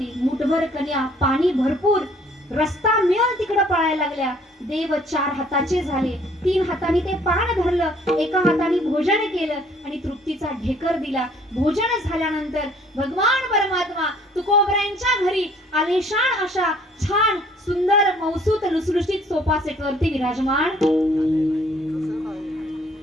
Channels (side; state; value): both; normal; correlation 0.59